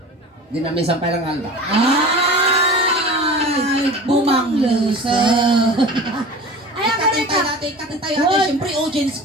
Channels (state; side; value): normal; both; correlation 0.37